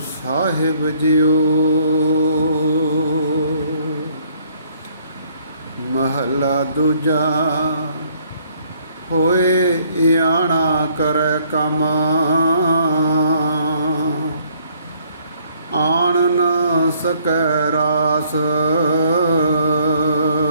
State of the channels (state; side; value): inverted; both; correlation -0.64